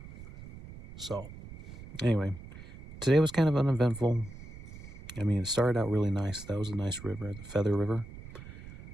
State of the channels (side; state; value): right; noise; rumble, 14 dB below the sound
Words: So anyway, today was kind of uneventful. I mean, it started out really nice. That was a nice river, the Feather River.